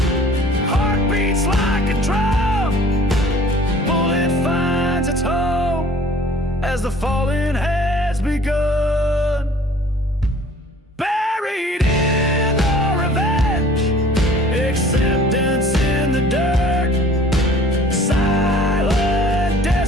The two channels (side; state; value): both; normal; correlation 0.51